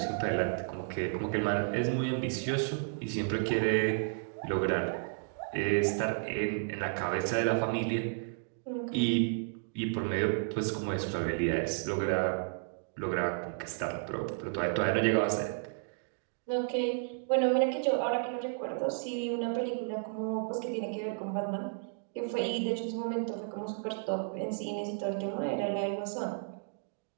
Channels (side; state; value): left; silent; digital silence